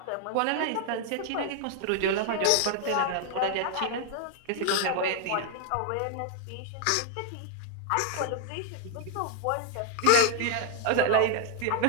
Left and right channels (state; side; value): different; both; correlation 0.00